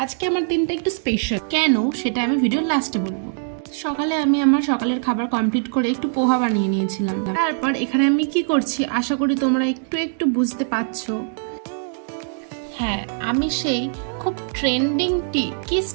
আজকে আমার দিনটা একটু স্পেশাল। কেন সেটা আমি ভিডিওর লাস্টে বলবো। সকালে আমি আমার সকালের খাবার কমপ্লিট করে একটু পোহা বানিয়ে নিয়েছিলাম। তারপর এখানে আমি কি করছি আশা করি তোমরা একটু একটু বুঝতে পারছো। হ্যাঁ, আমি সেই খুব ট্রেন্ডিং কিস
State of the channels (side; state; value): left; silent; digital silence